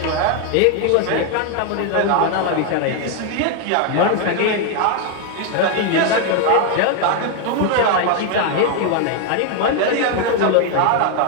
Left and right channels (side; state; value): both; different; correlation 0.01